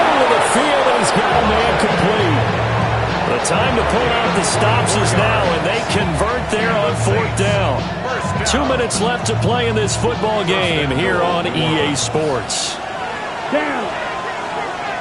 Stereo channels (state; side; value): identical; both; correlation 1.00